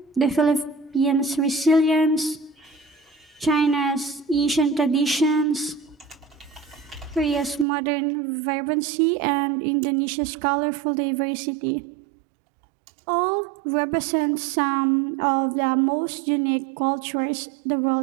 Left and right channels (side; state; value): left; drops out; at 7.7 s